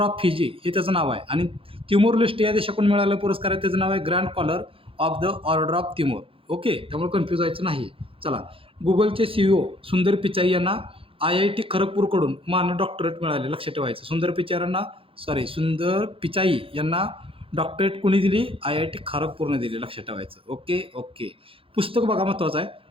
Fiji हे त्याचं नाव आहे. आणि तिमोर लेस्टे या देशाकडून मिळालेला पुरस्कार आहे, त्याचं नाव आहे Grand Collar of the Order of Timor. Okay. त्यामुळे कन्फ्यूज व्हायचं नाही. चला. गुगलचे CEO सुंदर पिचाई यांना IIT खरगपूरकडून मानद डॉक्टरेट मिळाले, लक्षात ठेवायचं. सुंदर पिचाई यांना डॉक्टरेट कोणी दिली? IIT खरगपूरने दिली, लक्षात ठेवायचं. ओके. पुस्तक बघा, महत्त्वाचं आहे.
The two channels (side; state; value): left; late; 0.27 ms